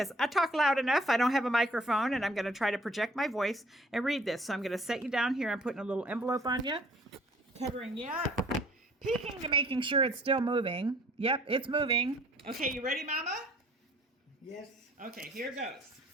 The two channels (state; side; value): normal; both; correlation 0.57